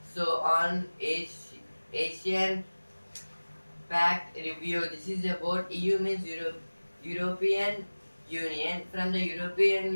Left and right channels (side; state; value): both; inverted; correlation -1.00